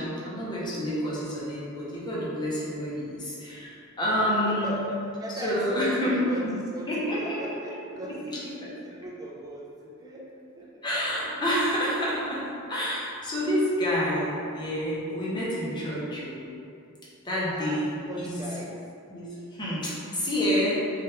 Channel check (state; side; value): normal; both; correlation 0.32